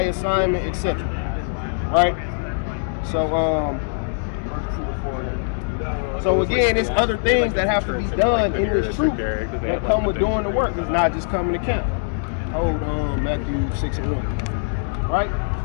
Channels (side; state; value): right; silent; digital silence